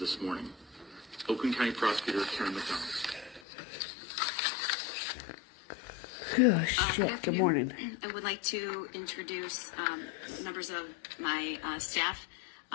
morning. Oakland County Prosecutor Karen McDonald. Good afternoon. Good morning. I would like to introduce members of my staff.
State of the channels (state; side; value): drops out; right; at 3.4 s